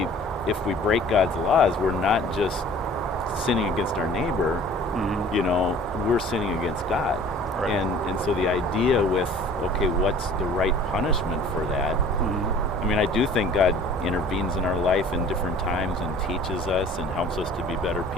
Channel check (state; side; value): normal; both; correlation 0.48